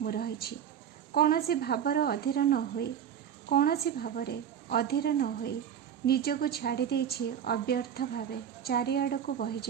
मु रहिछि। कौनसी भावर अधीर न होई, कौनसी भावरे अधीर न होई निजको छाड़ी देछि अव्यर्थ भावे चारिआडको बहि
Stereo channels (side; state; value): left; quieter; 8.9 dB